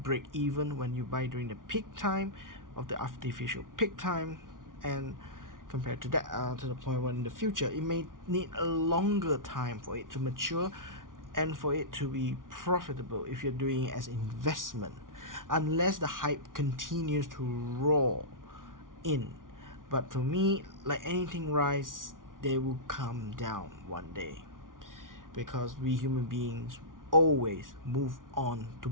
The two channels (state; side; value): late; left; 0.89 ms